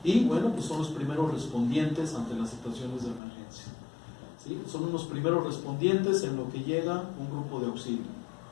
y, bueno, pues son los primeros respondientes ante las situaciones de emergencia, ¿sí? Son unos primeros respondientes en lo que llega un grupo de auxilio.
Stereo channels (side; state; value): right; drops out; at 3.2 s